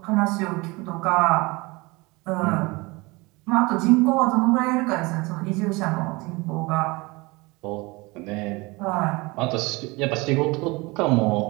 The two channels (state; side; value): quieter; left; 24.5 dB